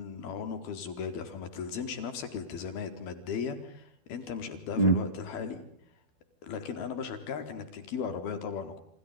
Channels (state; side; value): late; right; 12 ms